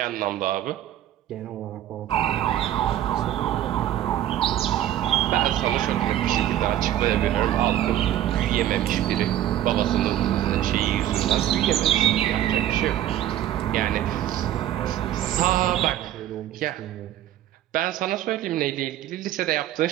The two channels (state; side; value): quieter; left; 12.4 dB